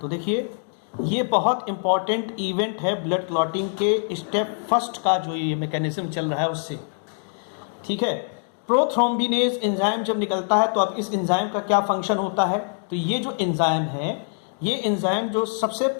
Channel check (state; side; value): silent; right; 63 dB below the other